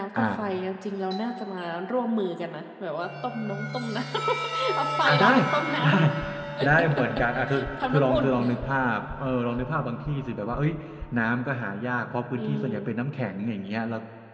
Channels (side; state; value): both; identical; correlation 1.00